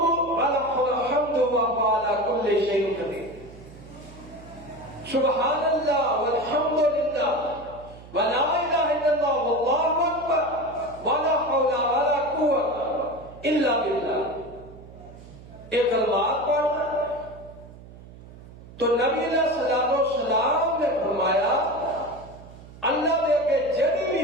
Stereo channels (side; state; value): right; noise; hum, 18 dB below the sound